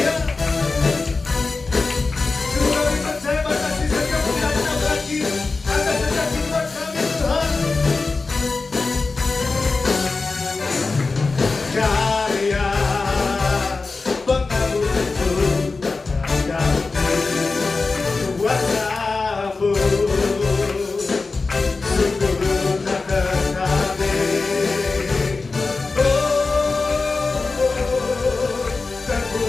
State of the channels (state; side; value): quieter; right; 3.9 dB